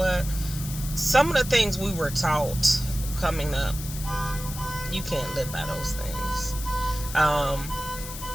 Some of the things we were taught coming up, you can't live by those things.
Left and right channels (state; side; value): noise; left; hiss, 10 dB below the sound